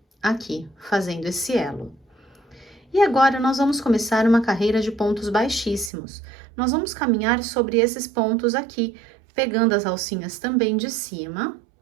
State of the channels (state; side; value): drops out; left; at 5.9 s